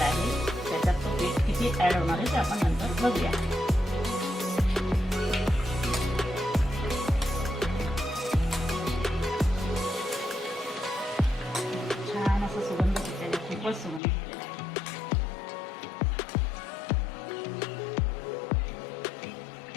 आहे त्याच्यात तो पीठ किती ऍड होणार आहे ते आपण नंतर बघूया। छान असं सुगंध सुटलेला आहे, खूपच सुगंध सुटलेला आहे।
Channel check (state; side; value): drops out; right; at 14.0 s